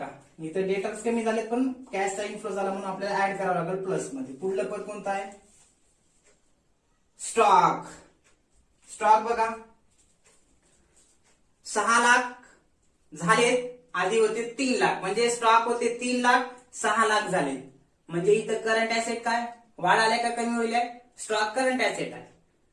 इथं डेटर्स कमी झालेत पण कॅशचा इन्फ्लो झाला म्हणून आपल्याला ऍड करावं लागेल प्लस मध्ये. पुढलं पद कोणतं आहे स्टॉक स्टॉक बघा 6 लाख झालेत, आधी होते 3 लाख, म्हणजे स्टॉक होते 3 लाख 6 लाख झाले, म्हणजे इथं करंट ऍसेट काय वाढायला का कमी होईल? स्टॉक करंट ऍसेट आहे.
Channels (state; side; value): identical; both; correlation 1.00